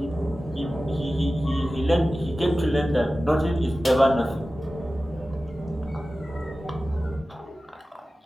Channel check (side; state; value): both; normal; correlation 0.95